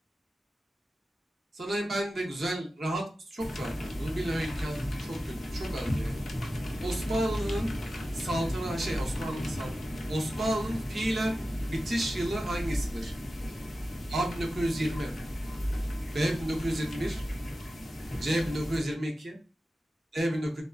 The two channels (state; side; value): normal; both; correlation 0.94